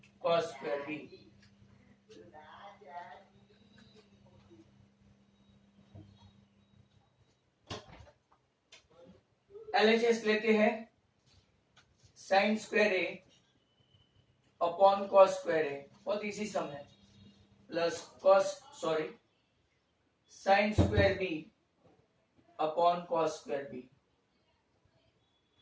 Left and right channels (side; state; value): both; identical; correlation 1.00